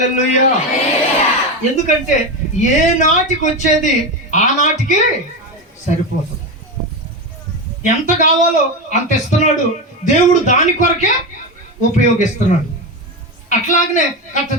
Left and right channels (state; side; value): normal; both; correlation 0.16